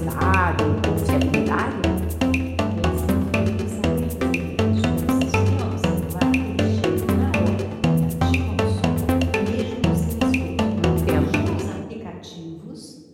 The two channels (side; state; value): both; identical; correlation 1.00